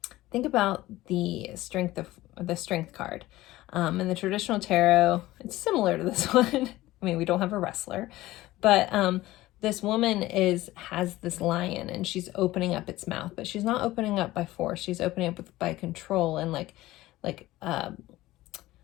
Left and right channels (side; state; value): right; quieter; 17.2 dB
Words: think about the strength card. In the traditional tarot, it's similar to this one. I mean, we don't have a wrestler, but this woman has this lion, and she's opening up its mouth, but she's not opening up by force. She's opening up by control and like